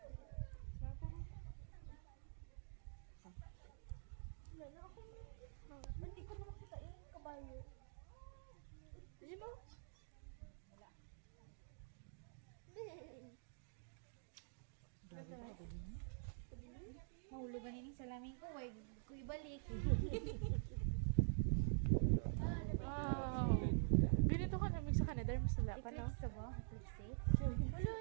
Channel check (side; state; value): left; silent; digital silence